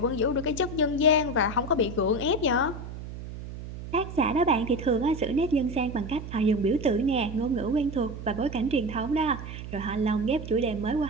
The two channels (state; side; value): noise; right; hum, 10 dB below the sound